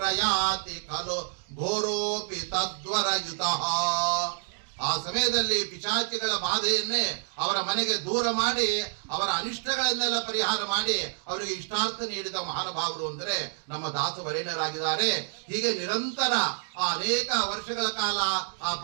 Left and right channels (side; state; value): left; silent; digital silence